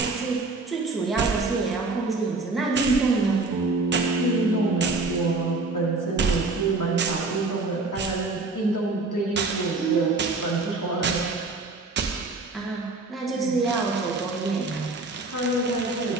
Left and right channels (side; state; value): left; quieter; 3.5 dB